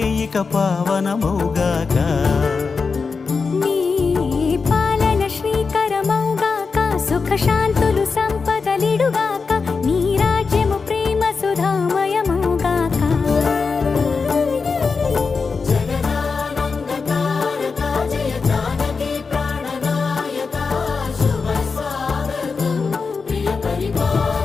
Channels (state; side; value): quieter; right; 4.8 dB